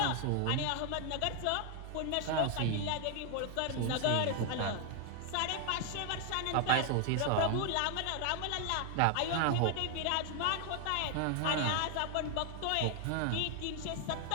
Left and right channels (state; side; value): different; both; correlation 0.00